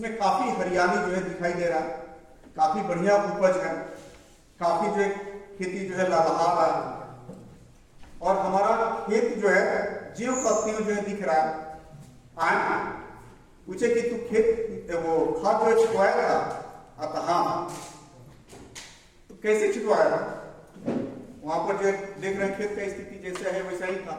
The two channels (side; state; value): both; identical; correlation 1.00